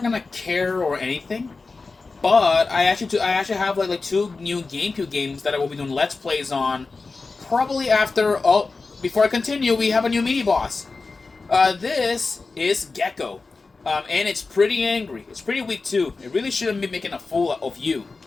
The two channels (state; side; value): quieter; right; 4.0 dB